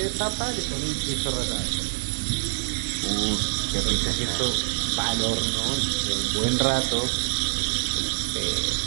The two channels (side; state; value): left; silent; digital silence